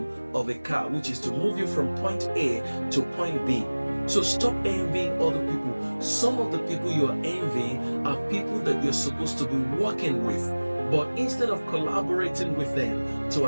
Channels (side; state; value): both; inverted; correlation -1.00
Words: of a car, which is to move you from point A to point B. So stop envying other people. Some of the people you are envying are people that you're supposed to be working with. But instead of collaborating with them to